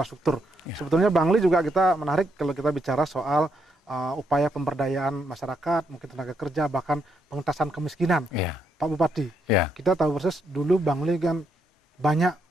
Ya. Sebetulnya Bangli juga kita menarik kalau kita bicara soal upaya pemberdayaan masyarakat, mungkin tenaga kerja, bahkan pengentasan kemiskinan. Ya. Pak Bupati, ya. Kita tahu persis dulu Bangli kan banyak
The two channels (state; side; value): normal; both; correlation 0.77